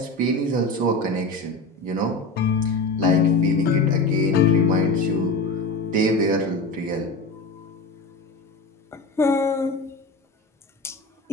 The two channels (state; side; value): quieter; right; 3.1 dB